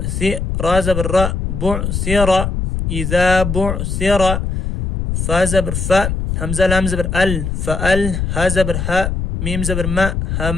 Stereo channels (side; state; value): left; noise; rumble, 2 dB below the sound